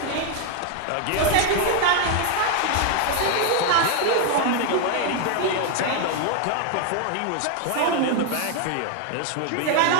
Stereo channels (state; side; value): different; both; correlation 0.00